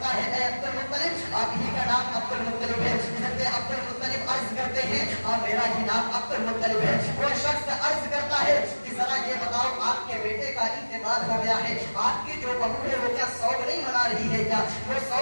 ہے اے عبد المطلب آپ ہی کا نام عبد المطلب ہے؟ حضرت عبد المطلب عرض کرتے ہیں ہاں میرا ہی نام عبد المطلب ہے۔ وہ شخص عرض کرتا ہے کہ ذرا یہ بتاؤ آپ کے بیٹے کا انتقال ہو گیا ہے، آپ کی جو بہو ہے وہ کیا سوگ نہیں منا رہی ہے کیا؟ وہ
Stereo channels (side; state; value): both; inverted; correlation -1.00